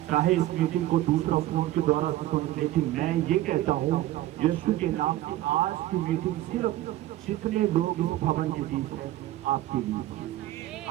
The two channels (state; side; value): quieter; left; 15.0 dB